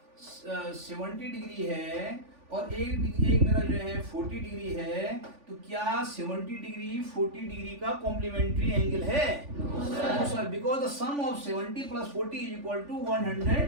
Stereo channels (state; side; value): late; left; 3.5 ms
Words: 70 डिग्री है और एक मेरा जो है 40 डिग्री है, तो क्या 70 डिग्री 40 डिग्री का कॉम्प्लीमेंट्री एंगल है? No sir, because the sum of 70 plus 40 is equal to